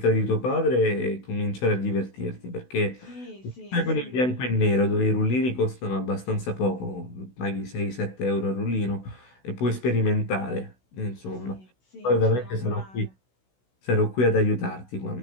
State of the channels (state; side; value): late; right; 16 ms